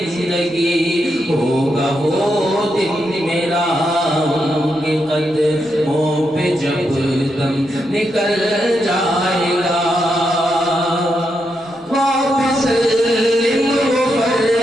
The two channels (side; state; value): both; normal; correlation 0.83